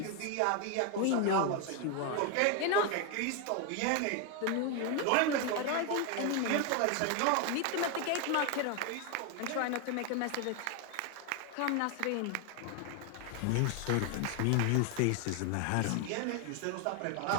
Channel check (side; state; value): both; different; correlation 0.01